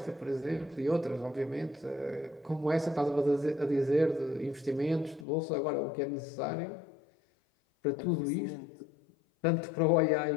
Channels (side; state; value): right; drops out; at 5.2 s